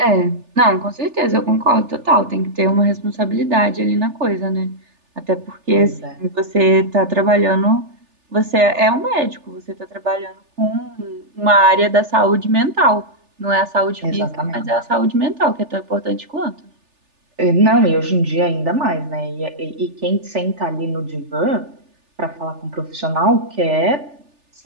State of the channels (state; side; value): late; left; 3.4 ms